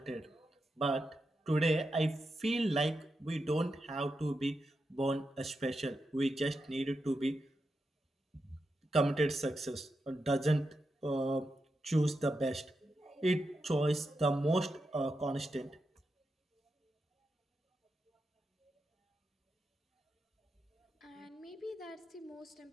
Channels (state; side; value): normal; both; correlation 0.87